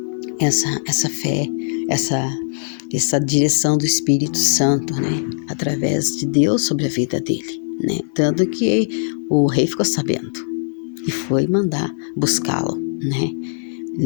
essa fé, essa direção do Espírito Santo, né? Através de Deus sobre a vida dele, né? Tanto que o rei ficou sabendo e foi mandar buscá-lo, né?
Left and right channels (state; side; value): silent; right; digital silence